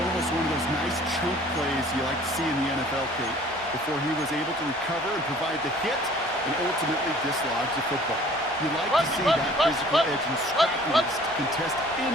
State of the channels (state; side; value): normal; both; correlation 0.52